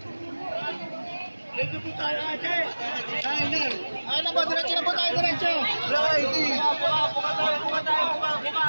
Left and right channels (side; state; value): both; inverted; correlation -1.00